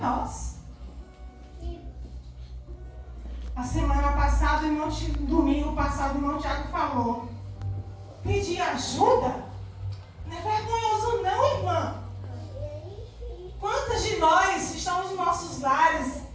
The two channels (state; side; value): identical; both; correlation 1.00